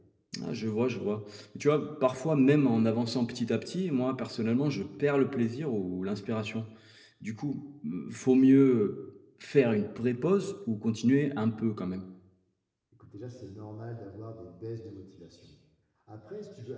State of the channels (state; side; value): identical; both; correlation 1.00